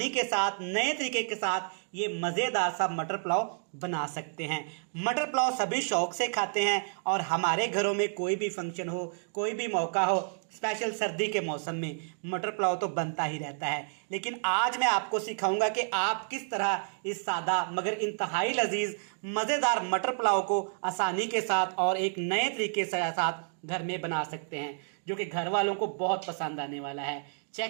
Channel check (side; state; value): left; silent; digital silence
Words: के साथ नए तरीके के साथ ये मज़ेदार सा मटर पुलाव बना सकते हैं। मटर पुलाव सभी शौक से खाते हैं और हमारे घरों में कोई भी फंक्शन हो, कोई भी मौका हो, स्पेशल सर्दी के मौसम में मटर पुलाव तो बनता ही रहता है। लेकिन आज मैं आपको सिखाऊंगा कि आप किस तरह इस सादा मगर इंतहाई लजीज मज़ेदार मटर पुलाव को आसानी के साथ और एक नए तरीके से साथ घर में बना सकते हैं, जो कि घर वालों को बहुत पसंद आने वाला है।